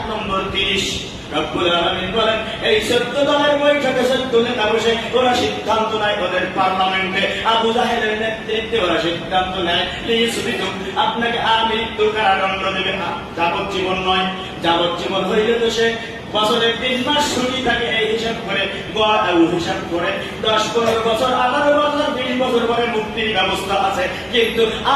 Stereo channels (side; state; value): both; identical; correlation 1.00